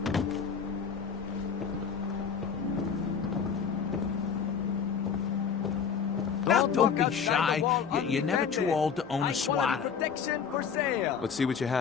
Now, don't be shy. You're never too old to own a swatter. Protection for sale. Let's see what you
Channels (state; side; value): quieter; right; 6.7 dB